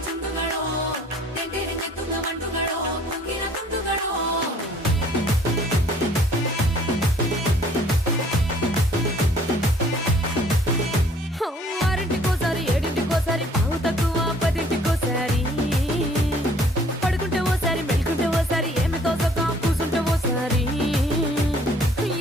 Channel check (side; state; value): both; normal; correlation 0.57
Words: ಚುಂಡುಗಳು ತೆಂಟೆರೆ ನೆತ್ತುಗ ಮಂಡುಗಳು ಕುಂಗಿನ ಕುಂದುಗಳು ఆరింటికోసారి ఏడింటికోసారి పావు తక్కువ పదింటికోసారి పడుకుంటే ఓసారి మెలుకుంటే ఓసారి ఏమి తోసక కూసుంటే ఓసారి